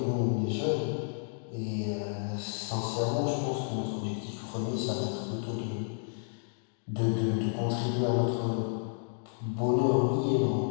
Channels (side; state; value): right; silent; digital silence